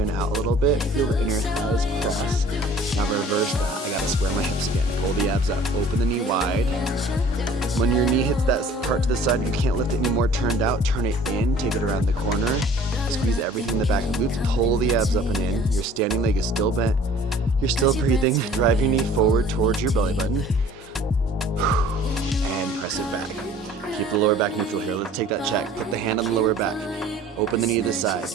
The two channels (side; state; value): both; normal; correlation 0.50